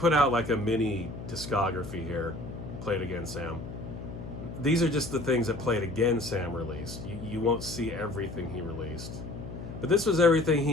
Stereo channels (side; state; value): left; noise; hum, 10 dB below the sound